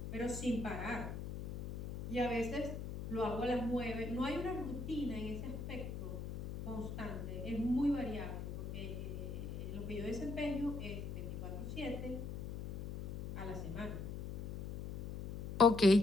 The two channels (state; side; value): noise; left; hum, 6 dB below the sound